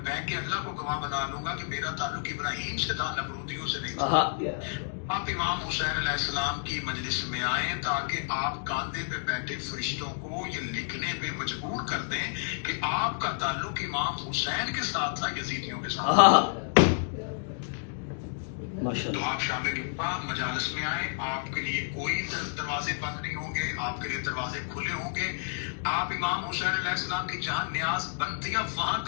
के अल्लाह को गवाह बना लूंगा कि मेरा ताल्लुक इब्राहिम से था, नमरूदियों से नहीं था। आप इमाम हुसैन अलैहिस्सलाम की मजलिस में आए ताकि आप कांधे पे बैठे फरिश्तों को ये लिखने पे मजबूर कर दें कि आपका ताल्लुक इमाम हुसैन के साथ था, यजीदियों के साथ। तो आप शामिल मजालिस में आए, आपके लिए कोई दरवाजे बंद नहीं होंगे, आपके लिए दरवाजे खुले होंगे। आप इमाम हुसैन अलैहिस्सलाम की जहां न्याज बनती है वहां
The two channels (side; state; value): right; silent; digital silence